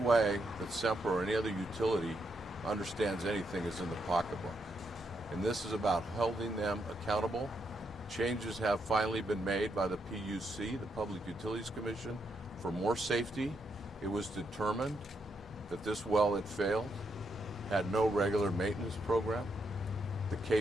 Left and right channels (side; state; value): both; normal; correlation 0.80